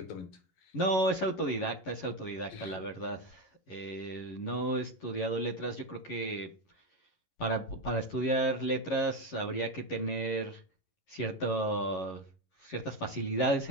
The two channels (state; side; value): late; right; 11 ms